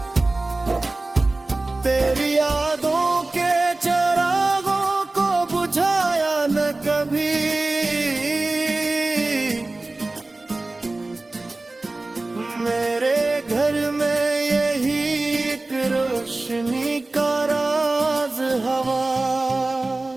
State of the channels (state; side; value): quieter; left; 3.0 dB